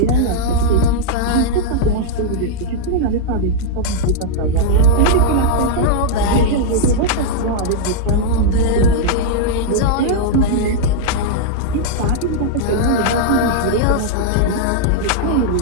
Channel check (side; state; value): both; different; correlation -0.02